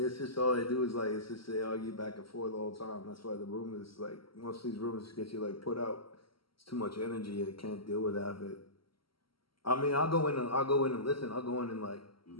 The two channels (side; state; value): right; late; 0.74 ms